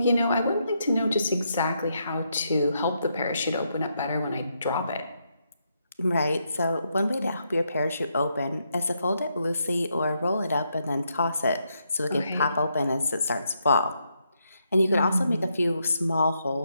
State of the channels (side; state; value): both; inverted; correlation -0.79